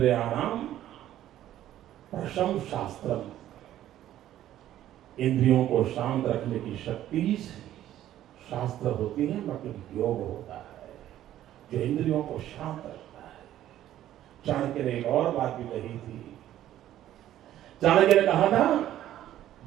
प्रशंसास्त्रम। इंद्रियों को शांत रखने की शक्ति शास्त्र होती है, मतलब योग होता है जो इंद्रियों को शांत रखता है। चाणक्य ने एक और बात भी कही थी। चाणक्य ने कहा था,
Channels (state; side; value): quieter; left; 12.6 dB